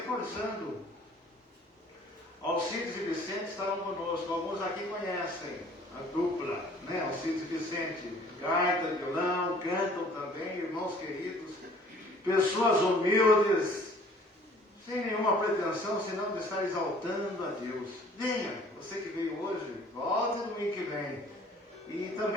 Alcides e Vicente estavam conosco, alguns aqui conhecem a dupla, né? Alcides e Vicente, gaita, violão, cantam também, irmãos queridos, pessoas humildes, sem nenhuma pretensão, senão de estar exaltando a Deus. Venha, você que veio hoje, volte no domingo que vem. E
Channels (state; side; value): normal; both; correlation 0.54